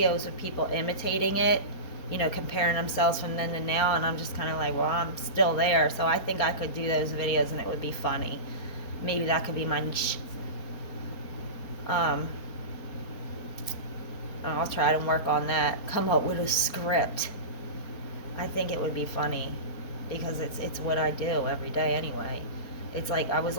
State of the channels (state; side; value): late; right; 4.4 ms